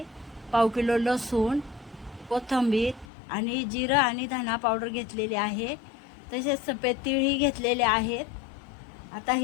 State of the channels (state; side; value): drops out; right; at 3.1 s